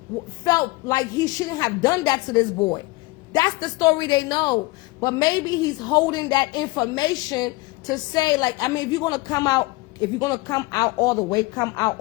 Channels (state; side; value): quieter; right; 22.6 dB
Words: felt like he shouldn't have done that to this boy. That's the story they know. But maybe he's holding that information to say, like, I mean, if you're going to come out all the way, come out